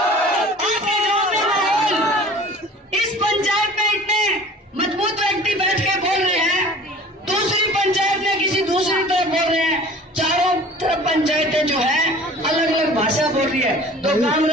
इस पंचायत में इतने मजबूत व्यक्ति बैठ के बोल रहे हैं, दूसरी पंचायत में किसी दूसरी तरफ बोल रहे हैं, चारों तरफ पंचायतें जो है अलग अलग भाषा बोल रही है। तो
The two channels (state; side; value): normal; both; correlation 0.45